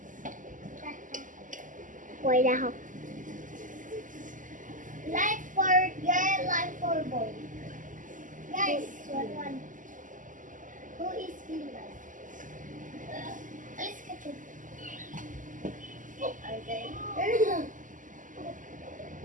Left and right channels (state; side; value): late; left; 0.38 ms